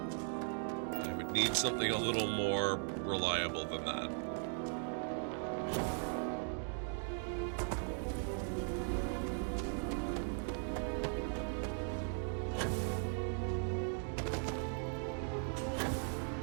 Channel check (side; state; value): left; silent; 52 dB below the other